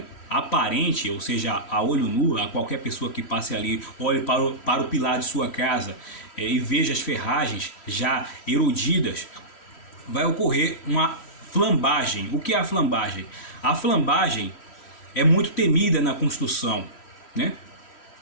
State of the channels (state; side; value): late; right; 3.1 ms